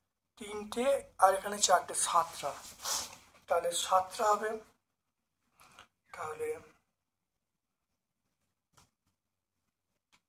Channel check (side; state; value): both; identical; correlation 1.00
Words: আর এখানে 4টে, 7টা। তাহলে 7টা হবে।